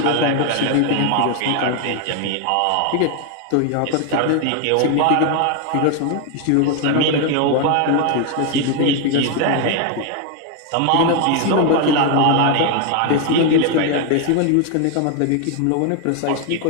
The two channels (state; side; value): different; both; correlation 0.01